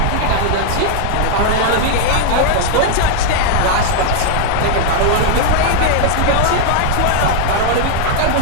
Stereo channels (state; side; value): different; both; correlation 0.00